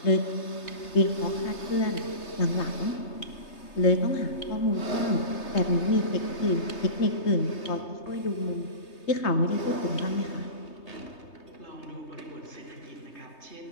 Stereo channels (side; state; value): right; late; 3.3 ms